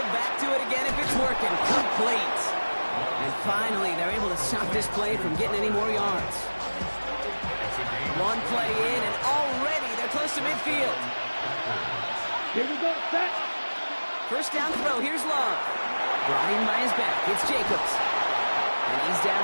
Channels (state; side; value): inverted; both; correlation -1.00